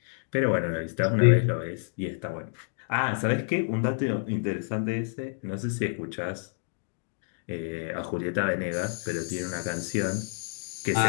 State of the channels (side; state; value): right; silent; digital silence